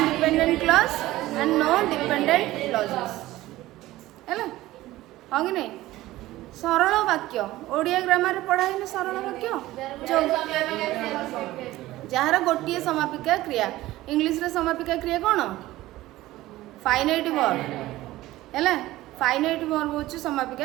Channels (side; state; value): left; quieter; 16.7 dB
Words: clause and no dependent clauses है हाँ कि नहीं सरल वाक्य Odia grammar पढ़ा है सरल वाक्य जार गोटे समापिका क्रिया इंग्लिश रे समापिका क्रिया कौन फाइनाइट वर्ब है फाइनाइट वर्ब हूँ